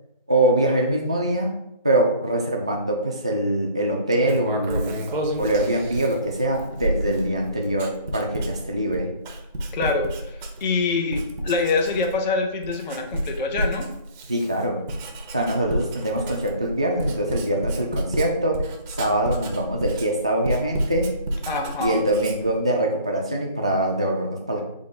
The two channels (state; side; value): inverted; both; correlation -0.47